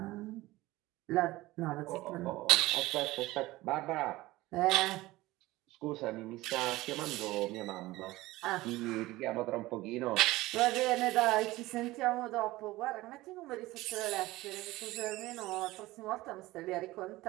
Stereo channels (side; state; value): left; quieter; 18.6 dB